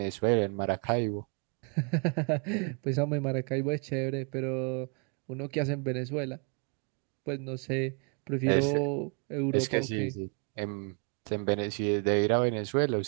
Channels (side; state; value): left; quieter; 36.8 dB